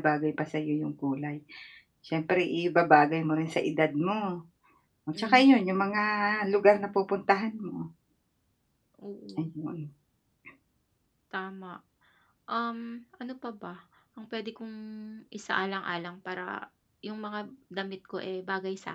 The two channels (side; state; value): both; identical; correlation 1.00